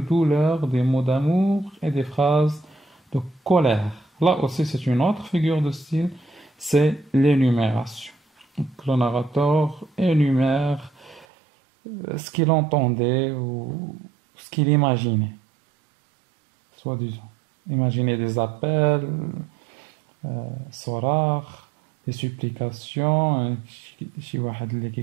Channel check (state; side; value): drops out; left; at 11.2 s